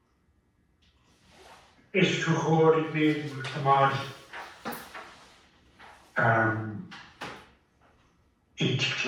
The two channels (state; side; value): identical; both; correlation 1.00